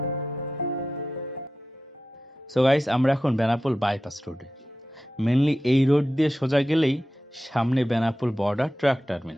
সো গাইস, আমরা এখন বেনাপোল বাইপাস রোডে। মেনলি এই রোড দিয়ে সোজা গেলেই সামনে Benapole border truck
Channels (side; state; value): both; normal; correlation 0.92